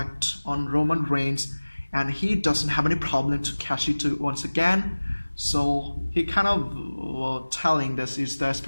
on Roman Reigns, and he doesn't have any problem to cash it once again. So he kind of telling this is the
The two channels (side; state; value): both; inverted; correlation -1.00